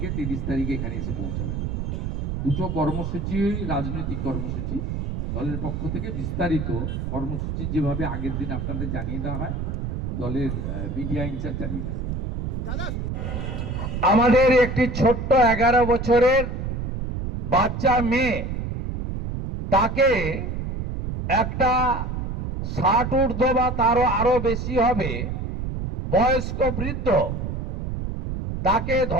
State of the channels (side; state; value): right; noise; rumble, 3 dB below the sound